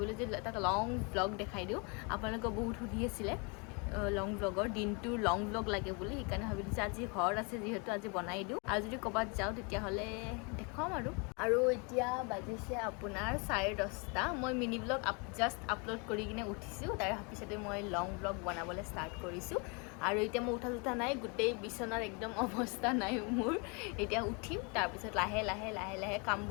যে এটা লং ব্লগ দেখাই দিও আপোনালোকক বহুত সুধি আছিল লং ব্লগৰ দিনটো লং ব্লগ লাগে বুলি হেকাৰণে ভাবিলো যে আজি ঘৰ আছে যেহেতু আজি বনাই দিও আৰু যদি কবাত যাও তেতিয়া হলে দেখাম আৰু এতিয়া বাজিছে আপোনাৰ 10:30 মই মিনি ব্লগ জাস্ট আপলোড কৰি কিনে উঠিছো তাৰ পিছতে মই লং ব্লগ বনাবলৈ ষ্টাৰ্ট কৰিছো আৰু এতিয়া মই উঠা নাই গুটেই বিছনাৰ একদম অৱস্থা নাই মোৰ এতিয়া উঠিম তাৰ পিছত লাহে লাহে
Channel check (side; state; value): right; quieter; 32.7 dB